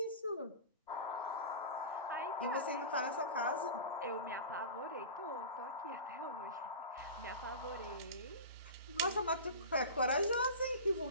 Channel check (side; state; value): both; inverted; correlation -0.31